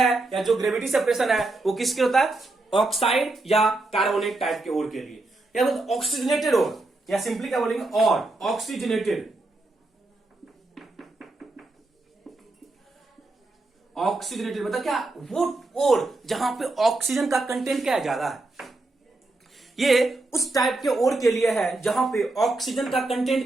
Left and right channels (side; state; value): left; quieter; 3.0 dB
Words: या जो ग्रेविटी सेपरेशन है वो किसके होता है, ऑक्साइड या कार्बोनेट टाइप के ओर के लिए, या तो ऑक्सीजनेटेड ओर, या सिंपली क्या बोलेंगे, और ऑक्सीजनेटेड मतलब क्या, वो ओर जहां पे ऑक्सीजन का कंटेंट क्या है, ज्यादा है। ये उस टाइप के ओर के लिए है जहां पे ऑक्सीजन का कंटेंट